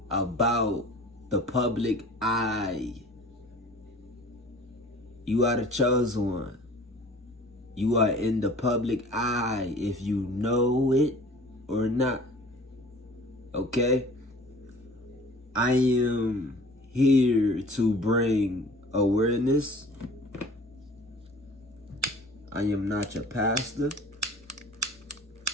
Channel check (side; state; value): both; normal; correlation 0.46